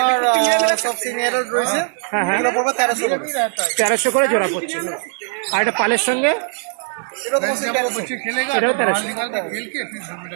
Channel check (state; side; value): silent; left; 65 dB below the other